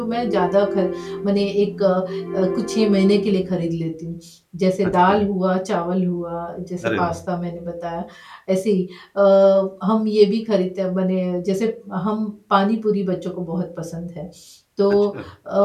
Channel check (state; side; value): identical; both; correlation 1.00